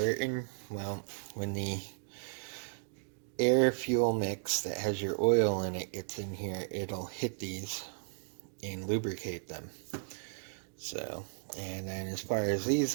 Well, when the air fuel mix that has your oil in it gets in here, it'll hit these and lubricate them. So, and then as far as these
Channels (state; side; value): silent; left; digital silence